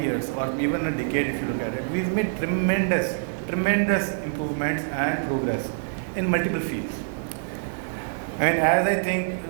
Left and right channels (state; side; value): silent; left; digital silence